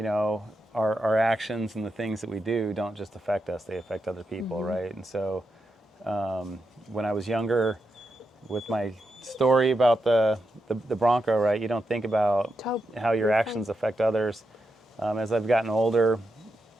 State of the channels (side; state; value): both; normal; correlation 0.86